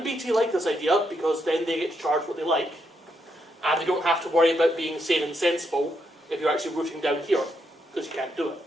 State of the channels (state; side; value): normal; both; correlation 0.79